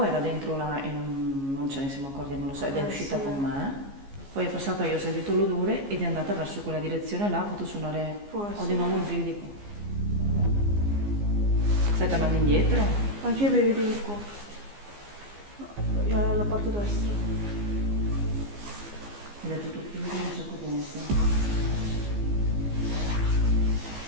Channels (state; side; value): late; left; 15 ms